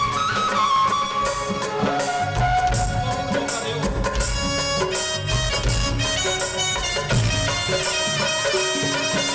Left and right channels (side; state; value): both; identical; correlation 1.00